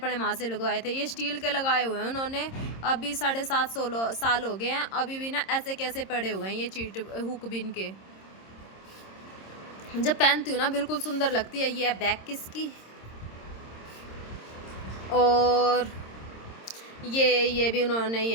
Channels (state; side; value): late; right; 26 ms